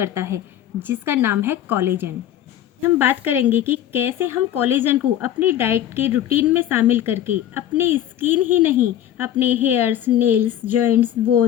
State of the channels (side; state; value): right; quieter; 11.3 dB